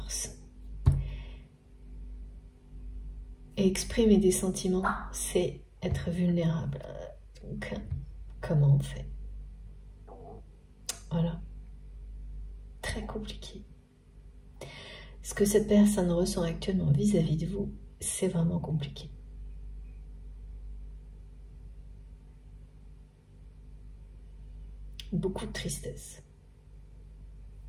Et exprimer des sentiments, c'est être vulnérable. Donc, comment on fait? Voilà. Très compliqué. Ce que cette personne ressent actuellement vis-à-vis de vous, c'est vraiment compliqué. Beaucoup de tristesse.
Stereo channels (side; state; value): both; identical; correlation 1.00